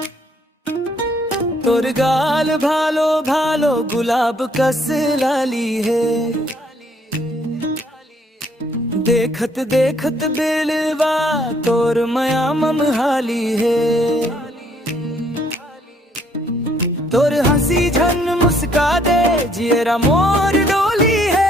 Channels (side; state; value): both; normal; correlation 0.66